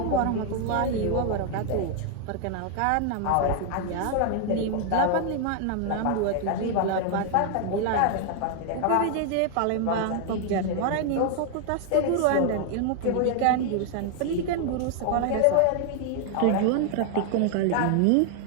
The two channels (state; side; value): different; both; correlation 0.00